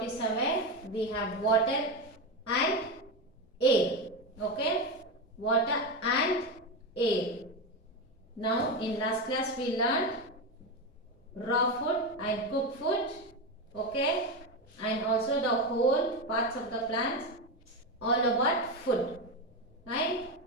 We have water and air. Okay, water and air. Now in last class we learned raw food and cooked food. Okay, and also the whole parts of the plants, all about food, right?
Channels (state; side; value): normal; both; correlation 0.15